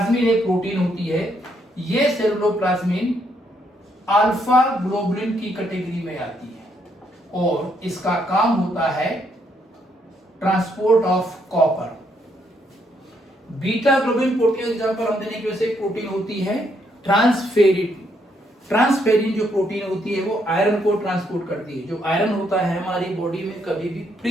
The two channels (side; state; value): both; normal; correlation 0.74